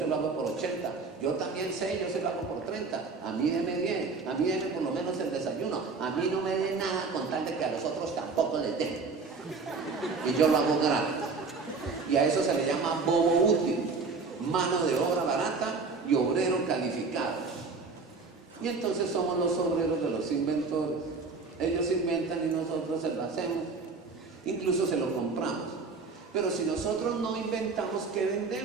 lo hago por 80, yo también sé, yo se lo hago por 30, a mí deme bien, a mí deme por lo menos el desayuno, a mí no me dé nada con tal de que a los otros tampoco les den. Y yo lo hago gratis. Y a eso se le llama bobo útil, mano de obra barata y obrero calificado. Y entonces somos los obreros de los inventores. Ellos inventan y nosotros se lo hacemos, incluso se lo compramos. Pero si nosotros no inventamos, ¿qué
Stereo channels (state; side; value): quieter; left; 4.4 dB